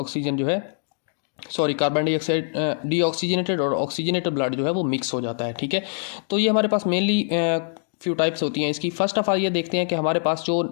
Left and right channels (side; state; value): right; silent; digital silence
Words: जो है कार्बन डाइऑक्साइड डीऑक्सीजनेटेड और ऑक्सीजनेटेड ब्लड जो है वो मिक्स हो जाता है। ठीक है, तो ये हमारे पास मेनली फ्यू टाइप्स होती हैं इसकी। फर्स्ट ऑफ ऑल ये देखते हैं कि हमारे पास जो